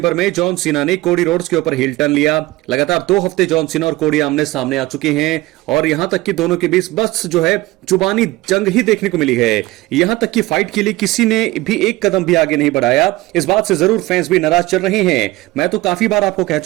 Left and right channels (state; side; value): quieter; left; 19.1 dB